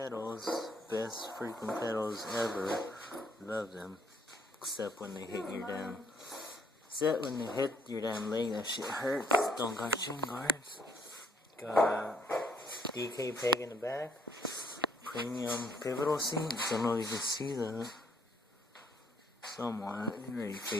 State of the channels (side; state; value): both; normal; correlation 0.68